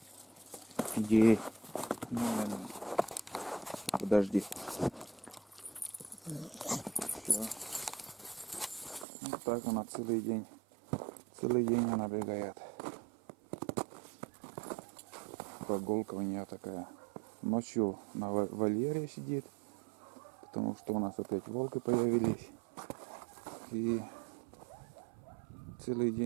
Иди. Подожди. Все. Вот так она целый день. Целый день она бегает. Прогулка у нее такая. Ночью на вольере сидит, потому что у нас опять волки появились. И целый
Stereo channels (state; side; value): drops out; left; at 9.1 s